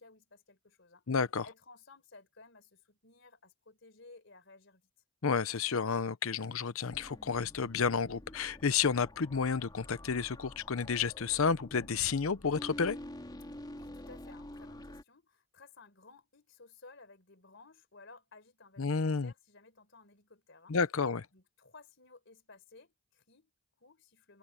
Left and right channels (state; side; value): quieter; right; 5.2 dB